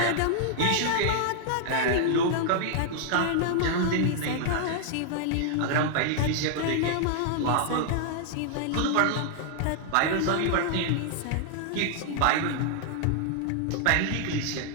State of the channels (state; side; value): different; both; correlation -0.01